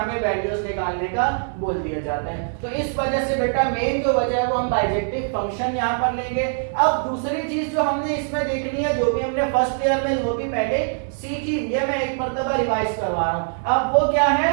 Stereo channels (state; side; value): silent; left; digital silence